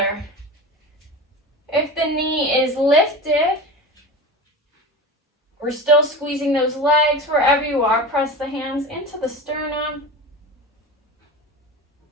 If the knee is lifted, we're still squeezing those legs. Wherever you are, press the hands into the sternum.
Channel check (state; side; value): normal; both; correlation 0.30